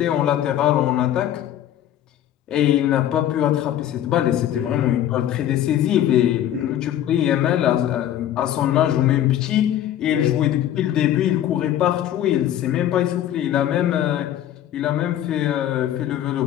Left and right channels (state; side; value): quieter; right; 11.6 dB